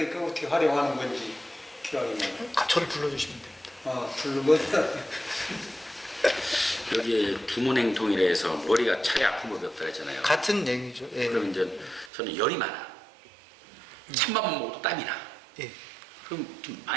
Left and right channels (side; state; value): left; drops out; at 12.1 s